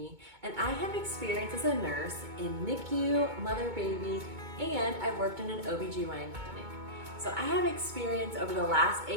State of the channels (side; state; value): left; late; 2.2 ms